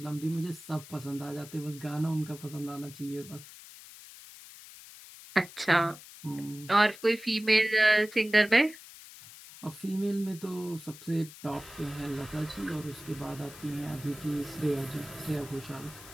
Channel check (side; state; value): left; noise; hiss, 17 dB below the sound